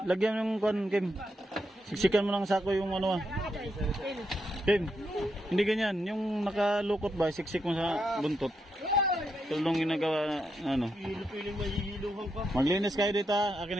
lagyan yung kuan, Kim. Siksikan mo ng sako yung ano. Kim, hindi ganyan. Yung nakalukot ba, siksik mo sa buntot. Tulong ginagawa na ano. Hilo-piling mahihiluhan pa. Maglinis kayo dito ha.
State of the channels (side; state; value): both; normal; correlation 0.82